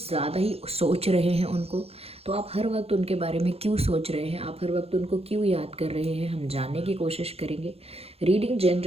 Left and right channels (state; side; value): late; left; 0.29 ms